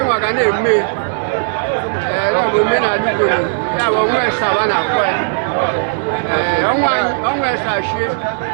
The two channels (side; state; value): left; silent; digital silence